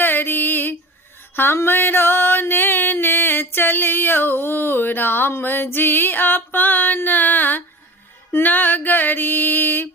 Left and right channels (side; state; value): both; normal; correlation 0.35